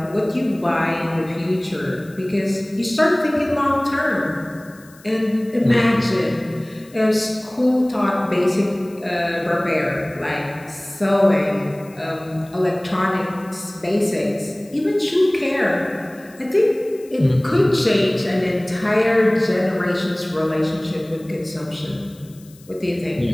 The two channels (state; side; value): noise; left; hiss, 26 dB below the sound